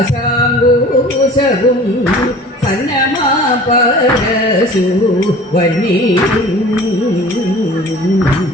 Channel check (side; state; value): both; normal; correlation 0.44